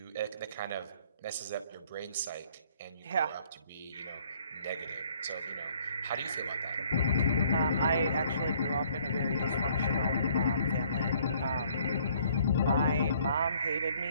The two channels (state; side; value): inverted; both; correlation -0.61